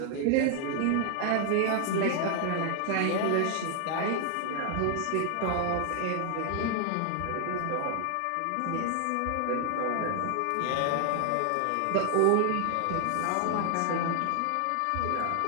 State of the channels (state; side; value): different; both; correlation 0.00